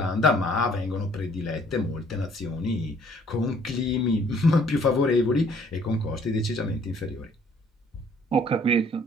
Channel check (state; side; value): normal; both; correlation 0.60